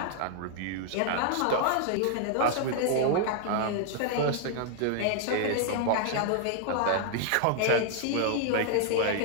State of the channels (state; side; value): different; both; correlation 0.00